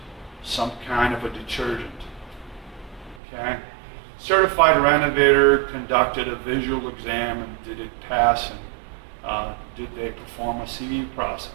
some kind of a detergent. Okay? Certified Renovator conducted a visual exam, and did it pass, and did they perform a CV process?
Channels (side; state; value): left; drops out; at 3.2 s